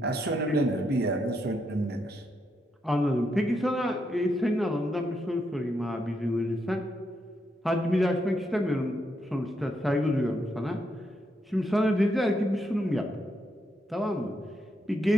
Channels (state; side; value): normal; both; correlation 0.80